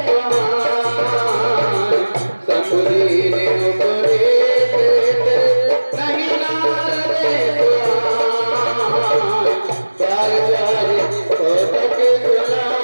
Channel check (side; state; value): both; inverted; correlation -1.00